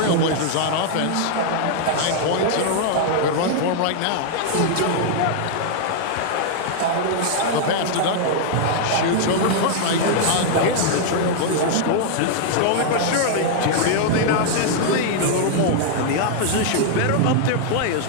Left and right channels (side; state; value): both; different; correlation -0.01